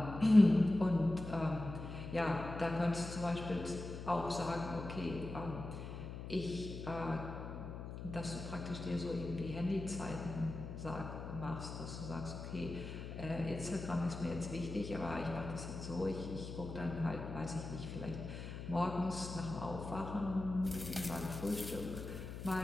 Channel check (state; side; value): noise; left; hum, 8 dB below the sound